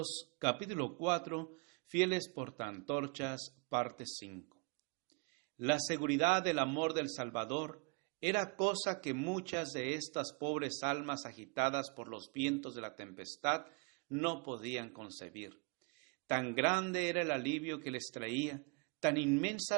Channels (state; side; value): quieter; left; 32.9 dB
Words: capítulo 4, fieles portaantorchas, parte 5. La seguridad del amor del Salvador era cosa que muchas de estas pobres almas agitadas por los vientos de la tempestad no podían concebir. Tan grande era el alivio que les traía, tan